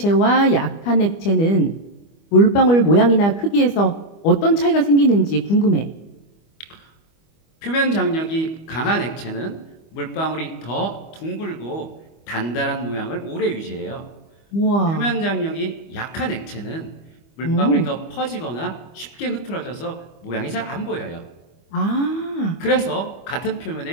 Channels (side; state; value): right; late; 25 ms